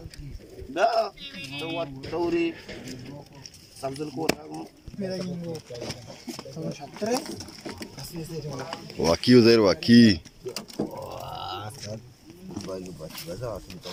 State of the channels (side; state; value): both; identical; correlation 1.00